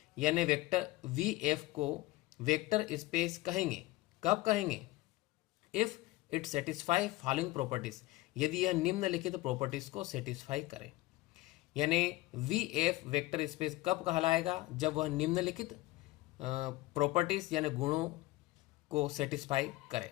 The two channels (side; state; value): right; quieter; 18.9 dB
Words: यानी वेक्टर VF को वेक्टर स्पेस कहेंगे। कब कहेंगे? If it satisfy following properties, यदि यह निम्नलिखित प्रॉपर्टीज को सेटिस्फाई करे। यानी VF वेक्टर स्पेस कब कहलाएगा? जब वह निम्नलिखित प्रॉपर्टीज यानी गुणों को सेटिस्फाई करे।